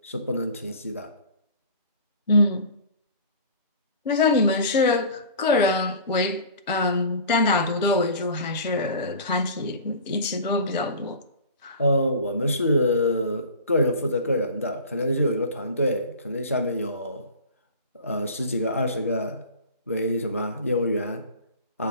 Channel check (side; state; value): both; inverted; correlation -0.40